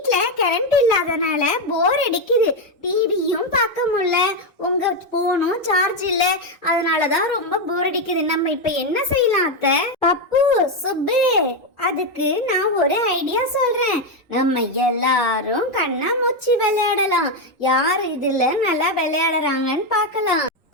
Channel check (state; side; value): normal; both; correlation 0.06